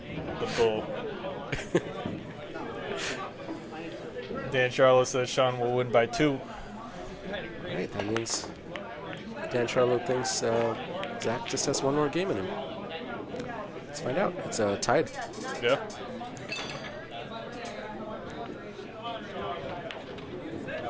bull. Dan Charlo says Shaun will win by 2. Right, that means Dan Charlo thinks Zac just has one more game in him. Let's find out. It's tied. Yeah.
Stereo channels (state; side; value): noise; right; hum, 29 dB below the sound